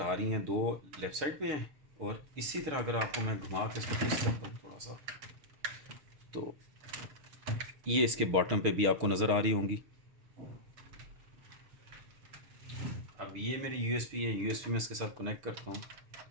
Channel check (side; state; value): left; late; 6.8 ms